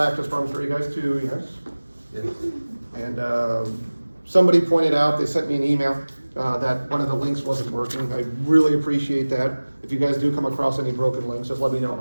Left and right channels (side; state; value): both; inverted; correlation -1.00